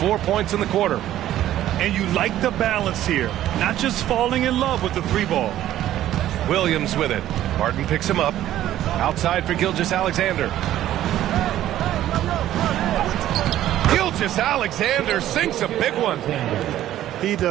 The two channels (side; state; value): left; quieter; 12.9 dB